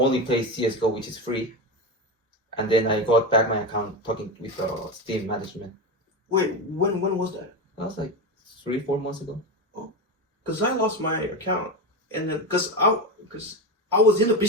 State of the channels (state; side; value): normal; both; correlation 0.18